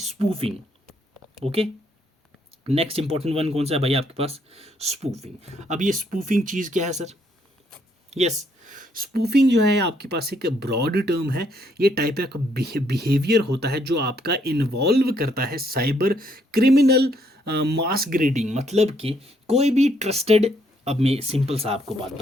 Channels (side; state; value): both; normal; correlation 0.71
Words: Okay, next important one कौन सा है भाई आपके पास, स्पूफिंग। अब ये स्पूफिंग चीज़ क्या है सर, यस, स्पूफिंग जो है आपके पास एक ब्रॉड टर्म है, ये टाइप का बिहेवियर होता है जो आपका इन्वॉल्व करता है साइबर क्रिमिनल मास ग्रेडिंग, मतलब कि कोई भी ट्रस्टेड, अब मैं सिंपल सा आपको बात